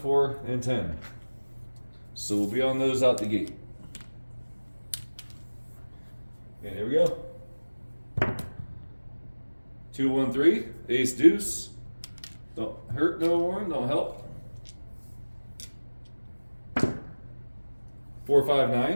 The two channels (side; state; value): both; inverted; correlation -1.00